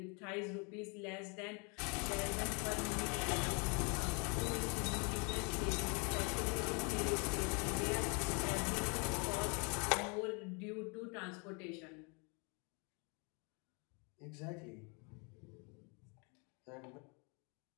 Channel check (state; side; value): quieter; right; 33.4 dB